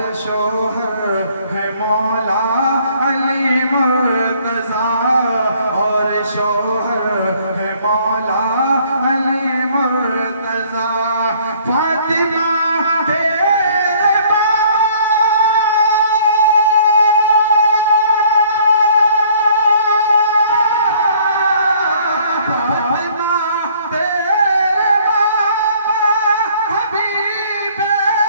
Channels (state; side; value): inverted; both; correlation -0.59